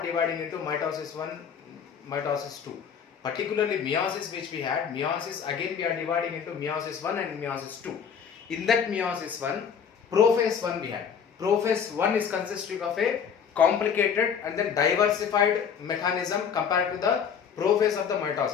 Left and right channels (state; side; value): quieter; right; 7.2 dB